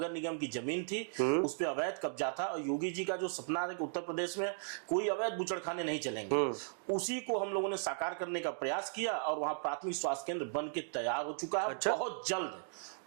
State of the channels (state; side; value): silent; left; digital silence